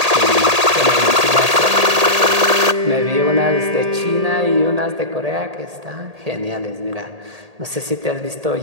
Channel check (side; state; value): left; late; 1.8 ms